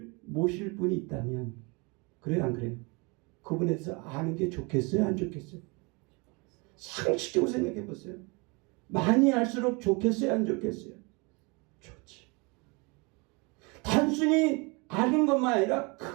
모실 분이 있다면 그래요 안 그래요? 그분에 대해서 아는 게 좋겠어요 안 좋겠어요? 상식적으로 생각해 보세요. 많이 알수록 좋겠어요 안 좋겠어요? 좋지. 단순히 아는 것만 아니라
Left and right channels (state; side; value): quieter; left; 29.1 dB